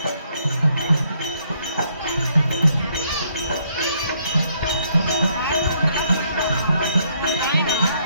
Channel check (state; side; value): inverted; both; correlation -0.70